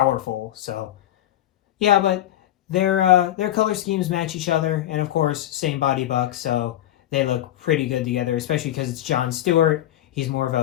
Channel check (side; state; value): right; quieter; 13.1 dB